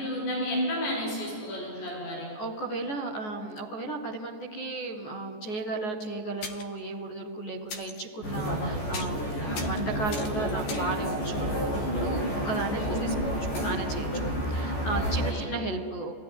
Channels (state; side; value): late; right; 14 ms